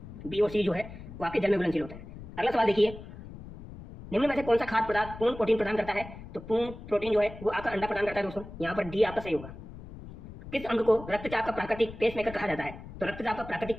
बी और सी जो है वो आपके जल में घुलनशील होता है। अगला सवाल देखिए, निम्न में से कौन सा खाद्य पदार्थ पूर्ण प्रोटीन प्रदान करता है? तो पूर्ण प्रोटीन जो है वो आपका अंडा प्रदान करता है दोस्तों। यहाँ पर डी आपका सही होगा। किस अंग को रक्तचाप का प्राकृतिक पेसमेकर कहा जाता है? तो रक्तचाप का प्राकृतिक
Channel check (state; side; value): noise; left; rumble, 14 dB below the sound